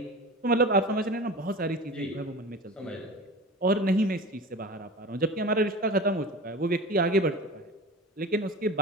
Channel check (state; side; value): normal; both; correlation 0.33